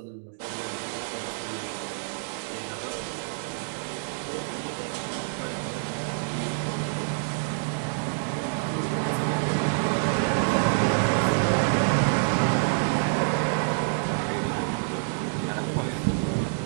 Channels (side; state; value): left; silent; digital silence